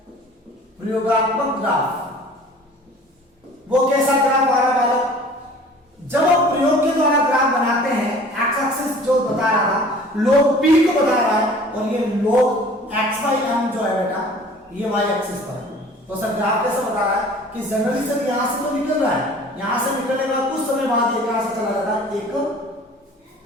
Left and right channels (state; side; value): normal; both; correlation 0.47